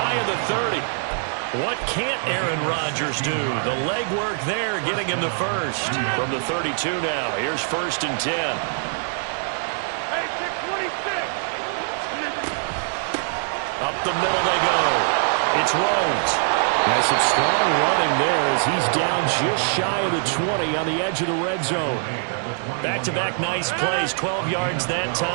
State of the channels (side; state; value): left; silent; digital silence